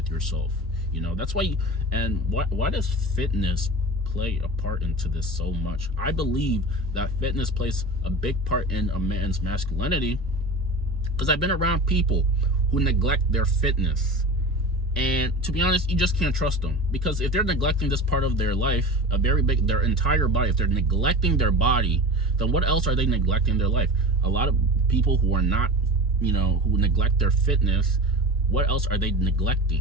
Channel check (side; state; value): both; normal; correlation 0.33